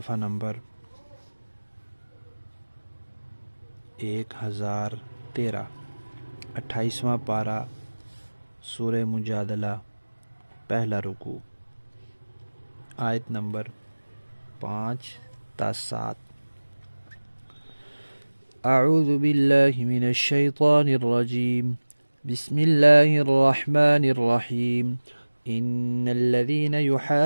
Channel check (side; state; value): both; inverted; correlation -1.00